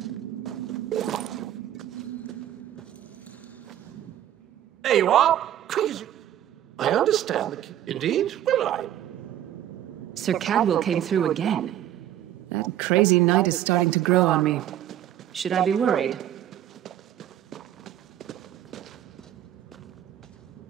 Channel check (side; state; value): left; quieter; 11.7 dB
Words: There you are. Quick as you... I understand the... Indeed? Well, I... Sir Cadwell came through again. That crazy night is starting to grow on me. Should I be worried?